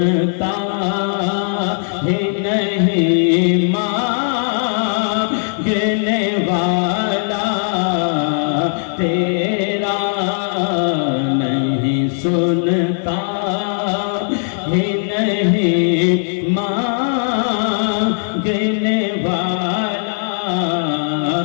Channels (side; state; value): right; silent; 64 dB below the other